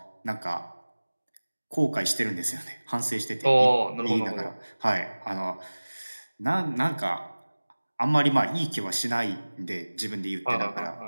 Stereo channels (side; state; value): both; inverted; correlation -1.00